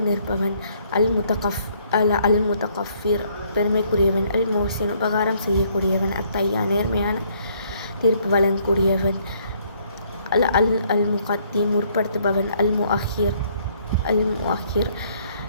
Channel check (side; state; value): both; inverted; correlation -0.66